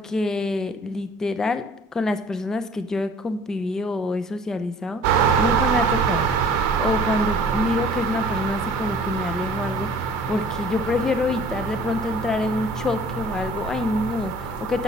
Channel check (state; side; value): normal; both; correlation 0.50